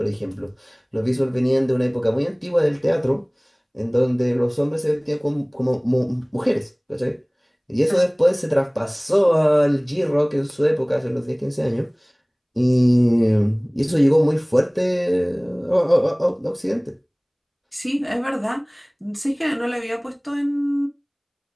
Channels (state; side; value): identical; both; correlation 1.00